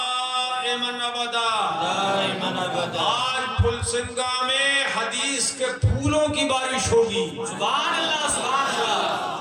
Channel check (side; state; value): both; identical; correlation 1.00